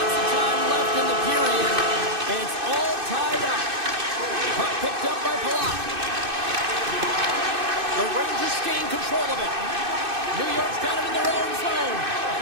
of time left in the period. It's all tied up. Puck picked up by Palat. The Rangers gain control of it. New York's got it in their own zone.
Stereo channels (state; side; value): late; left; 2.6 ms